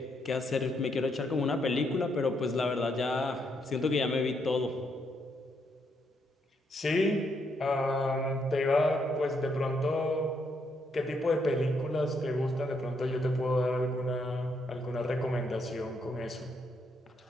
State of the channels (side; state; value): both; normal; correlation 0.76